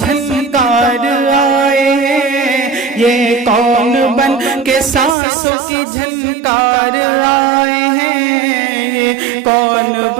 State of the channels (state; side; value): drops out; left; at 5.2 s